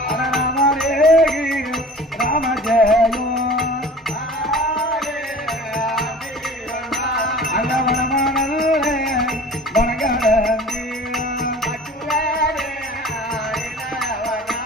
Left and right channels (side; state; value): both; normal; correlation 0.43